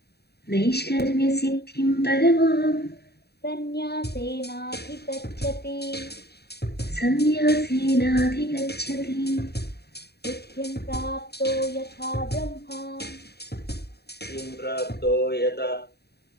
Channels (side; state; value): right; late; 0.47 ms